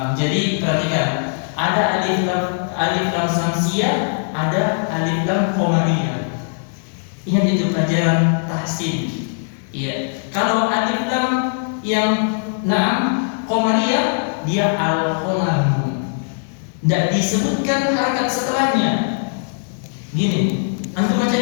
Jadi perhatikan, ada alif lam samsiyah, ada alif lam qamariyah. Ingat itu pelajaran tahsin. Iya. Kalau alif lam yang qamariyah, dia al-qalam. Tidak disebutkan harakat setelahnya. Gini, antum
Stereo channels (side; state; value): right; silent; 65 dB below the other